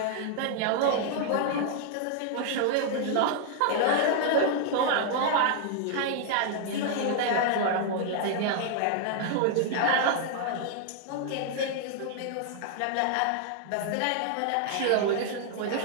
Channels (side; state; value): both; different; correlation 0.00